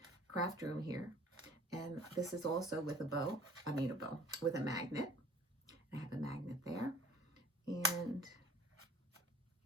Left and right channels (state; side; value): normal; both; correlation 0.51